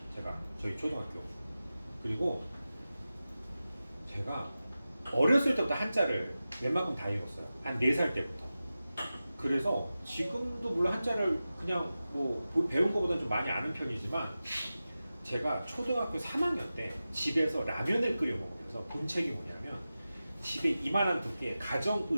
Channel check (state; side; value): inverted; both; correlation -0.94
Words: 제가 저희 초등학교. 그리고 제가 어렸을 때부터 한자를 웬만큼 다 읽었어요. 한 4살 때부터. 그래서 지금도 물론 한자를 그냥 뭐 배운 것보다는 좀 많이 아는 편이지만 제가 초등학교 3학년 때 집에서 라면을 끓여 먹으면서 본 책이 뭐냐면 집에 이만한 두께의